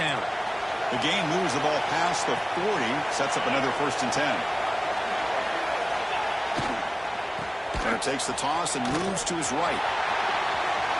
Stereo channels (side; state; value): both; identical; correlation 1.00